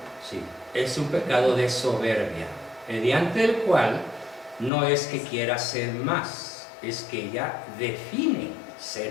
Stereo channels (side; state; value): right; drops out; at 4.7 s